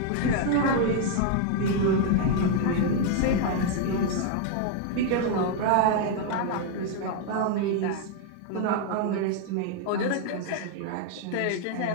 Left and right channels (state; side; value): different; both; correlation 0.00